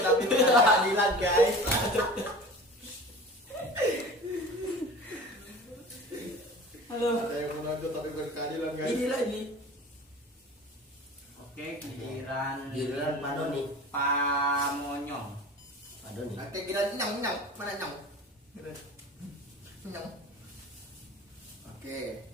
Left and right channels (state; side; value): normal; both; correlation 0.38